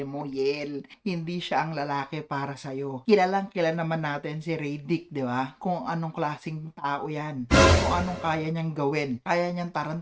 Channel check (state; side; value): identical; both; correlation 1.00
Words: mo, Yel. Hindi siya ang lalaki para sa'yo. Kilalang kilala naman natin si Radic, di ba? Kung anong klaseng tao yan. Kung anong kaya niyang gawin. Kaya niyang